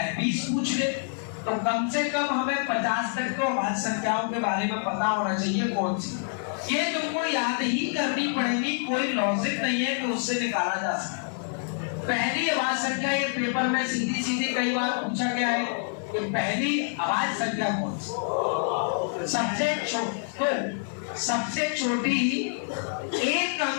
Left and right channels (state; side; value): silent; right; 60 dB below the other